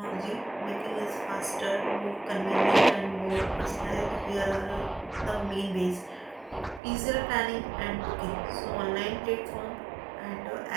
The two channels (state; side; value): drops out; left; at 6.8 s